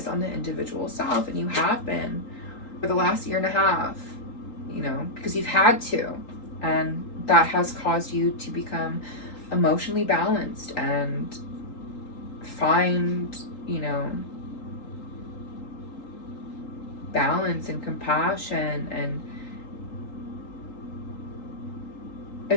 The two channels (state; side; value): late; right; 3.8 ms